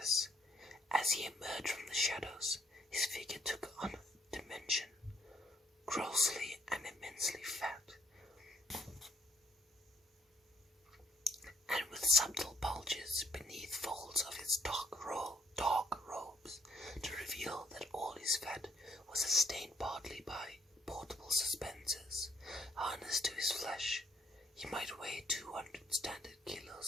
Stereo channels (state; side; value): normal; both; correlation 0.68